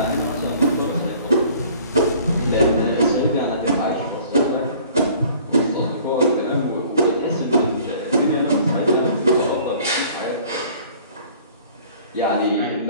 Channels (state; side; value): inverted; both; correlation -0.52